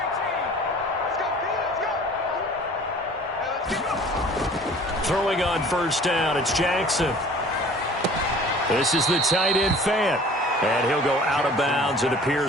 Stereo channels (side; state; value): both; normal; correlation 0.48